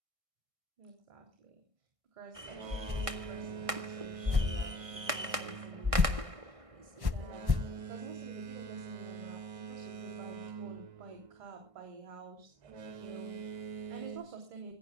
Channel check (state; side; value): late; left; 1.6 ms